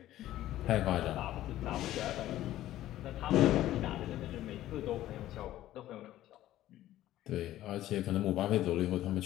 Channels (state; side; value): quieter; right; 14.0 dB